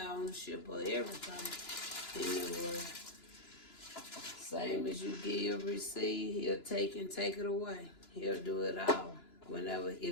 ownership of everything in the world. Same as you give, receive, he'll take and take it away. He'll do it all whenever,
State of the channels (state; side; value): late; right; 2.9 ms